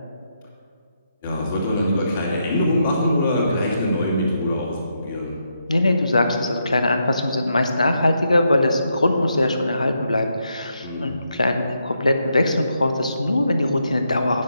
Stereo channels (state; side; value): inverted; both; correlation -0.80